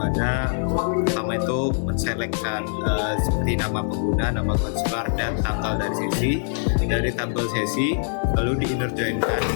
pertama itu menselekkan seperti nama pengguna, nama konselor, dan tanggal dari sesi dari tabel sesi, lalu di inner joinkan.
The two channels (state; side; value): silent; right; digital silence